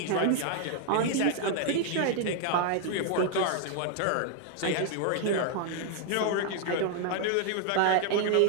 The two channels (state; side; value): different; both; correlation 0.00